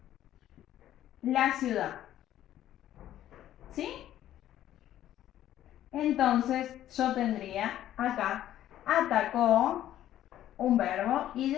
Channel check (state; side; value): quieter; right; 12.4 dB